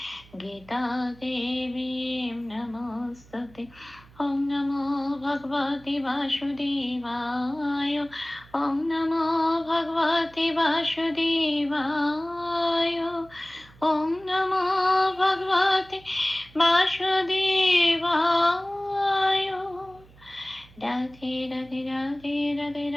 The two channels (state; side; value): noise; right; hum, 24 dB below the sound